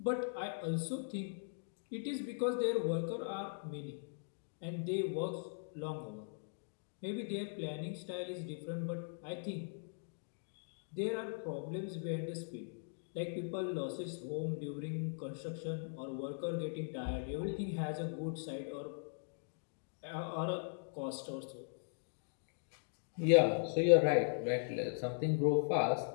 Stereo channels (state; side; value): silent; right; digital silence